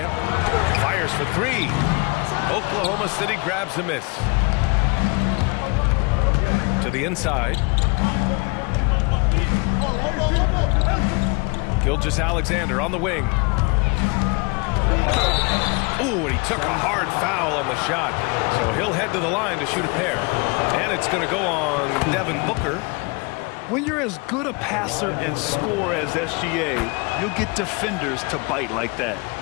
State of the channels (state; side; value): quieter; right; 30.3 dB